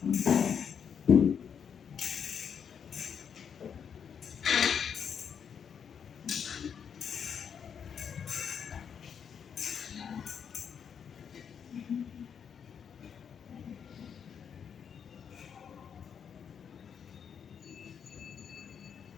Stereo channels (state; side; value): quieter; right; 7.4 dB